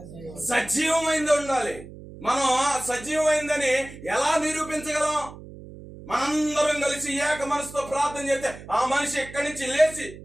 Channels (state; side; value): noise; right; hum, 16 dB below the sound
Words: సజీవమైంది ఉండాలి. మనం సజీవమైందని ఎలా నిరూపించగలం? మనందరం కలిసి ఏక మనసుతో ప్రార్థన చేస్తే ఆ మనిషి ఎక్కడి నుంచి లేచి